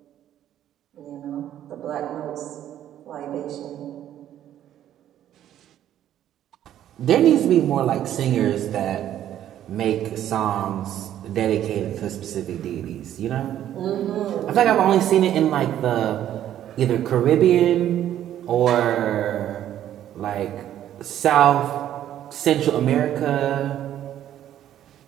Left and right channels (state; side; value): quieter; left; 11.4 dB